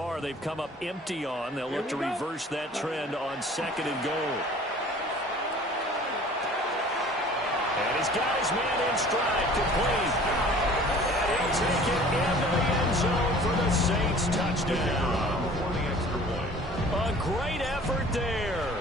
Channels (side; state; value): both; normal; correlation 0.48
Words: they've come up empty on. They'll look to reverse that trend on second and goal. And he's got his man in stride, complete. And he'll take it into the end zone for the Saints touchdown. A great effort there.